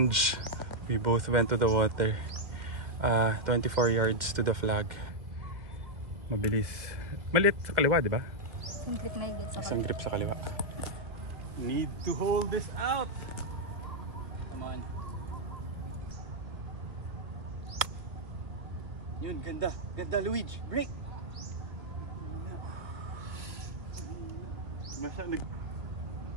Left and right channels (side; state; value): left; late; 1.7 ms